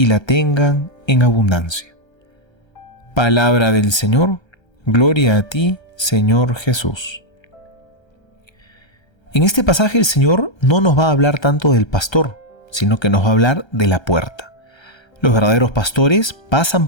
la tengan en abundancia. Palabra del Señor. Gloria a ti, Señor Jesús. En este pasaje el Señor no nos va a hablar tanto del pastor, sino que nos va a hablar de la puerta. Los verdaderos pastores pasan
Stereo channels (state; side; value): late; right; 1.3 ms